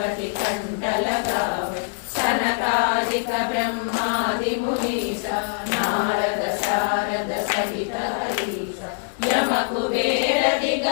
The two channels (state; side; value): silent; right; digital silence